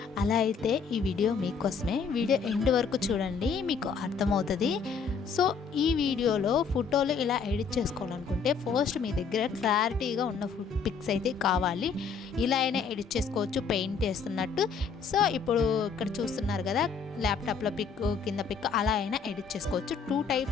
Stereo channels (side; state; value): right; quieter; 5.7 dB